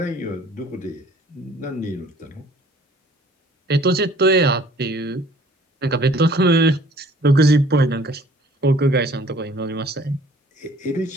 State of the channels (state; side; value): normal; both; correlation 0.55